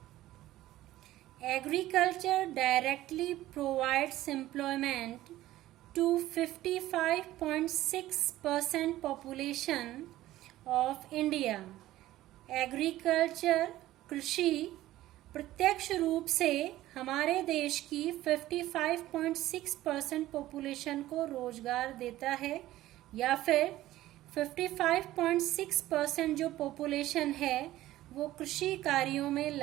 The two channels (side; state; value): left; quieter; 15.3 dB